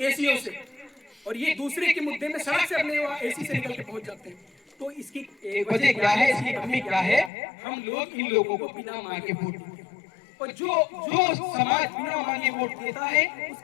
एसीओ से, और ये दूसरे के मुद्दे में सड़क से अपने एसी से निकल के पहुंच जाते हैं। तो इसकी वजह क्या है? इसकी कमी क्या है? हम लोग इन लोगों को बिना मांगे वोट देते हैं, और जो समाज बिना मांगे वोट देता है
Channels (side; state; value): right; drops out; at 7.3 s